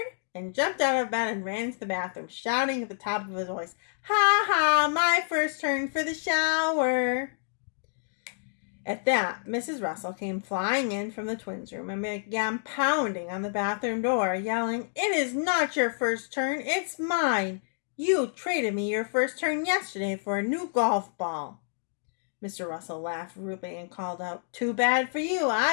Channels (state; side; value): silent; right; digital silence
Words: and jumped out of bed and ran into the bathroom, shouting at the top of his voice, "Ha ha, my first turn for the shower." At that, Mrs. Russell came flying in from the twins' room and began pounding on the bathroom door, yelling, "It is not your first turn, it's mine. You traded me your first turn yesterday for a new golf ball." Mr. Russell laughed rudely and called out, "Too bad for you,